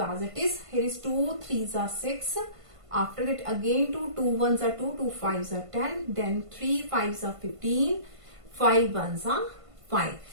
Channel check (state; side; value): late; left; 1.5 ms